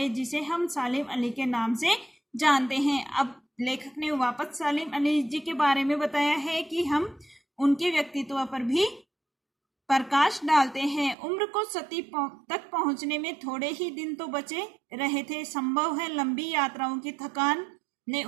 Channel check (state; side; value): drops out; left; at 11.2 s